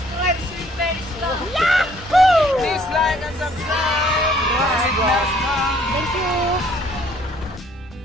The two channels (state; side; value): normal; both; correlation 0.61